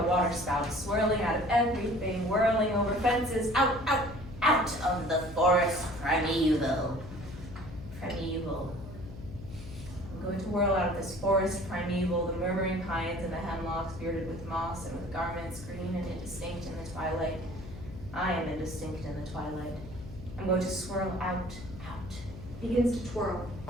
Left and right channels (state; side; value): noise; left; hum, 13 dB below the sound